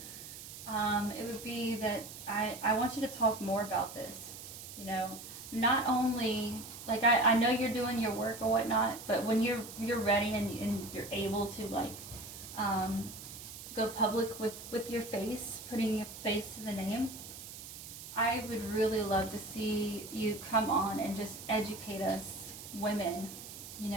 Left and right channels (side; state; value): right; noise; hiss, 12 dB below the sound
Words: it would be that I want you to talk more about this. Not only, like, I know you're doing your work or whatnot, but when you're ready and you're able to, like, go public with your face, putting your face to the name, I would really love to see you come on and just educate us women.